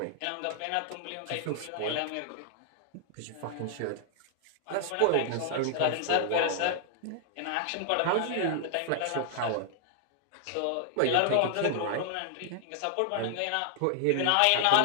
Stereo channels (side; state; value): both; different; correlation 0.00